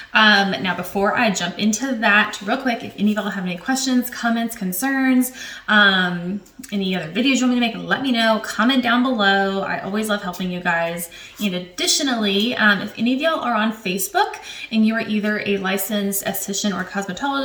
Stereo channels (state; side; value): identical; both; correlation 1.00